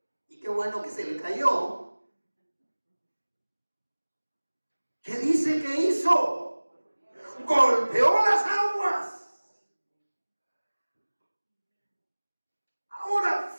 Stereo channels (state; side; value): inverted; both; correlation -1.00